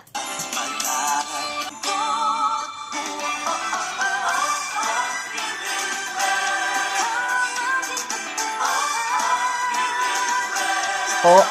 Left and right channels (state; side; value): identical; both; correlation 1.00